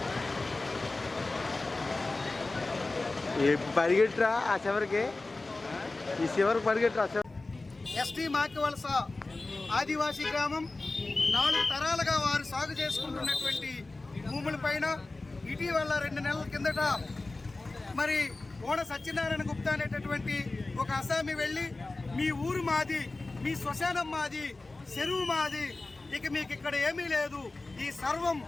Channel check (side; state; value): right; quieter; 3.2 dB